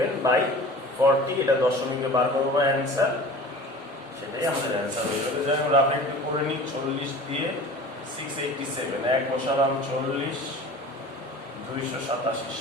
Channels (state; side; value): normal; both; correlation 0.41